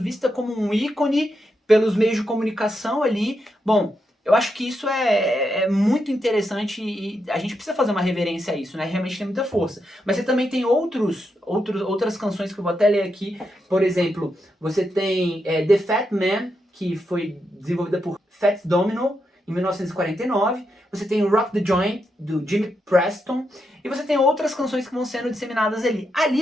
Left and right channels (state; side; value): normal; both; correlation 0.83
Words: vista como um ícone pelos meios de comunicação ali. Bom, eu acho que isso é muito interessante e a gente precisa fazer uma reverência a isso, né? Realmente tem muita força. Mas você também tem outras canções que eu vou até ler aqui. Por exemplo, você tem The Fat Man, que foi desenvolvida por Fats Domino, em 1949. Você tem Rock the Joint, do Jimmy Preston. E você tem outras canções que vão sendo disseminadas ali.